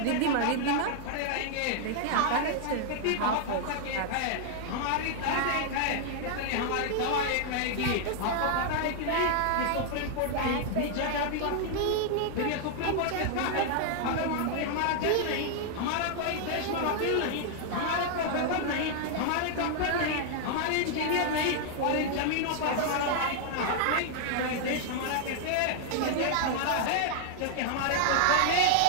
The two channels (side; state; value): both; different; correlation 0.00